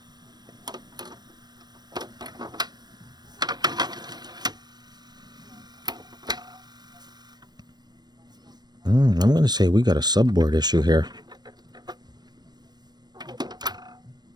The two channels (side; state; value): left; late; 0.20 ms